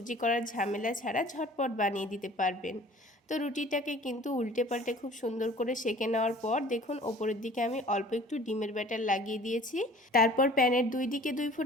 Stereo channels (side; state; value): both; normal; correlation 0.48